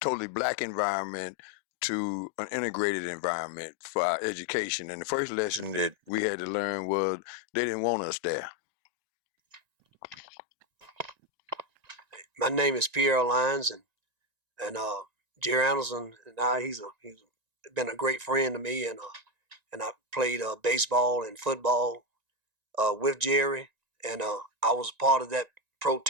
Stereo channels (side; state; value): left; late; 1.9 ms